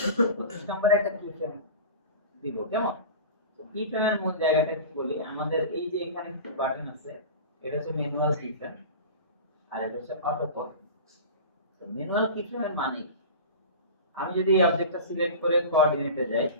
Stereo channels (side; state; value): both; inverted; correlation -0.33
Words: নম্বরে একটা কি ফ্রেম দিব, কেমন? তো কি ফ্রেমের মূল জায়গাটা কি বলি, আমাদের এই যে এখানে একটা বাটন আছে, এটা হচ্ছে ম্যানুয়াল কি ফ্রেম, আর এটা হচ্ছে অটো কল। তো ম্যানুয়াল কি ফ্রেমের মানে আমি যদি এই অবজেক্টটা সিলেক্ট করে কোঅর্ডিনেটে যাই,